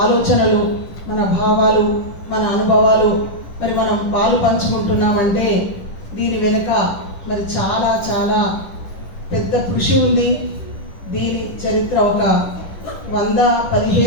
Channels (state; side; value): late; right; 10 ms